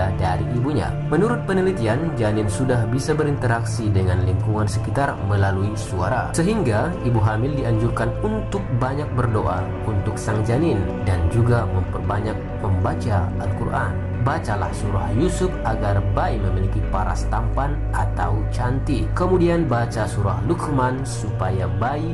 dari ibunya. Menurut penelitian, janin sudah bisa berinteraksi dengan lingkungan sekitar melalui suara, sehingga ibu hamil dianjurkan untuk banyak berdoa untuk sang janin dan juga memperbanyak membaca Al-Quran. Bacalah surah Yusuf agar bayi memiliki paras tampan atau cantik. Kemudian baca surah Luqman supaya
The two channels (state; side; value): identical; both; correlation 1.00